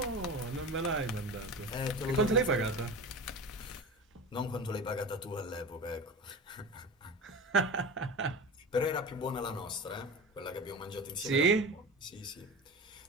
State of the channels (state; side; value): normal; both; correlation 0.31